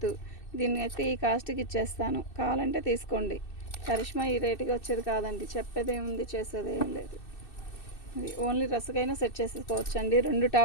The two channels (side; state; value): right; late; 2.6 ms